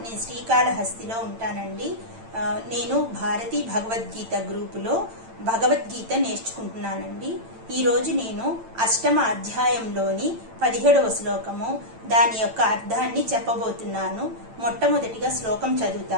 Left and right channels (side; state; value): left; late; 8.9 ms